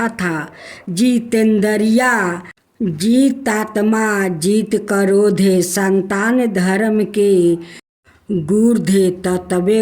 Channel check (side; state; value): both; identical; correlation 1.00